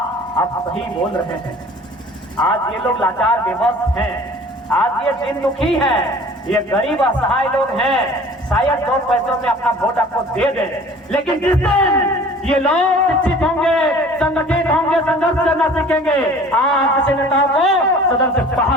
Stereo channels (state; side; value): normal; both; correlation 0.47